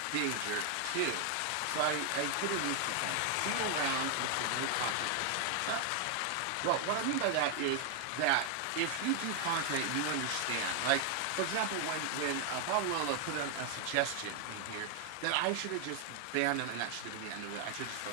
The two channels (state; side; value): different; both; correlation 0.00